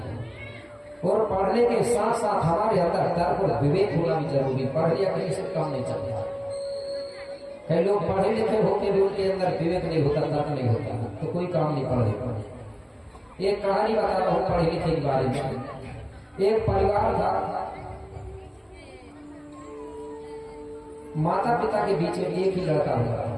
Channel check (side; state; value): both; identical; correlation 1.00